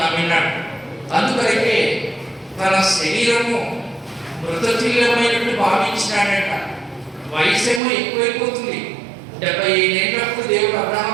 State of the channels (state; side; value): drops out; left; at 7.8 s